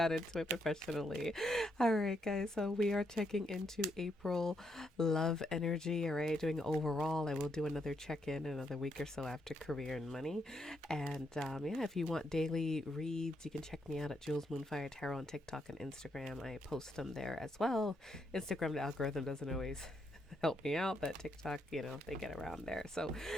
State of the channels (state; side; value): normal; both; correlation 0.78